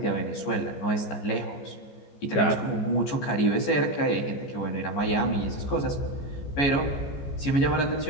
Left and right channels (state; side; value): late; right; 14 ms